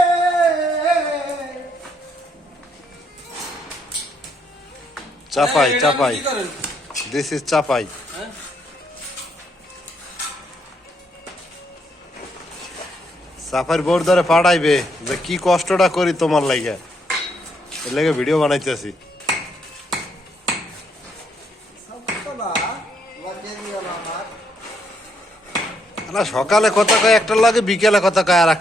চাপাই চাপাই, this is Chapai. চাপাইর bore ধরে পাঠাইবে যে কি কষ্টটা করি তোমার লাগে, এর লাগে ভিডিও বানাইতেছি। সকালে কথা কয় একটার লাগে, বিকেলে কথা কয় আর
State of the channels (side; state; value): both; normal; correlation 0.74